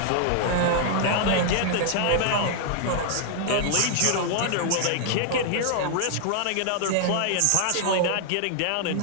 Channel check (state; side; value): different; both; correlation 0.00